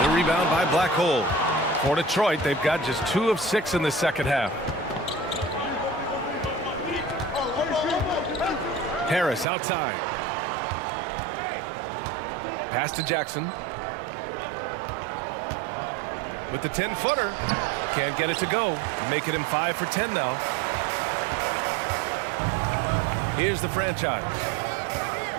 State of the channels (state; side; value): drops out; left; at 9.5 s